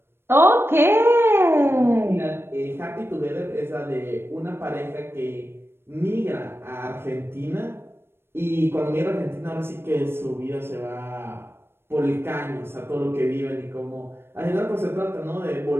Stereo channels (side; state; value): left; late; 0.11 ms